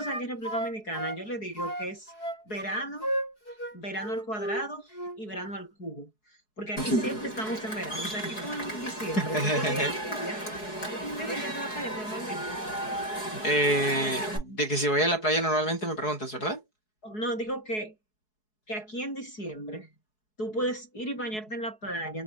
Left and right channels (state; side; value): late; right; 4.7 ms